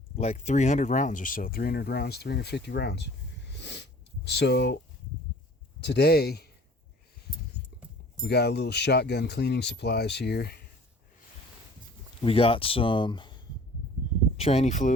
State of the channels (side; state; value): both; normal; correlation 0.49